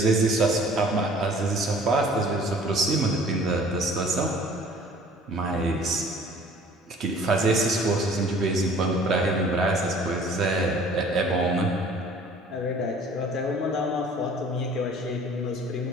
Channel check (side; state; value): both; normal; correlation 0.51